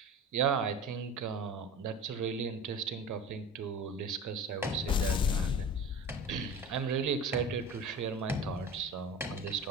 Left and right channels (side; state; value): both; normal; correlation 0.34